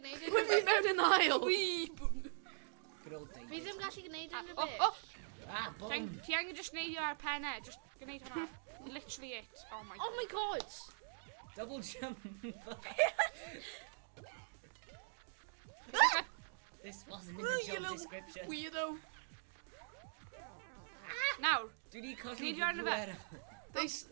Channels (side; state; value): left; silent; digital silence